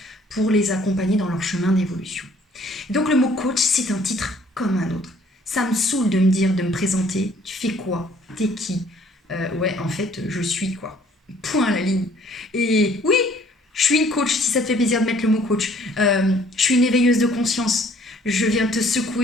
pour les accompagner dans leur chemin d'évolution. Donc le mot coach, c'est un titre comme un autre. Ça me saoule de me dire, de me présenter, tu fais quoi, t'es qui, ouais, en fait, je suis quoi. Point à la ligne. Et oui, je suis une coach, si ça te fait plaisir de mettre le mot coach. Je suis une éveilleuse de conscience. Je viens te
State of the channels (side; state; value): both; normal; correlation 0.59